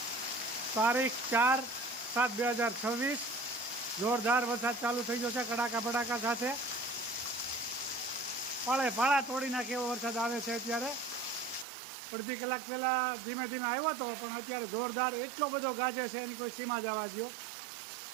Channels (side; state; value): left; drops out; at 11.7 s